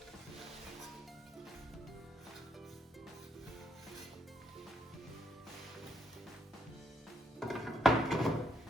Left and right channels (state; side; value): normal; both; correlation 0.75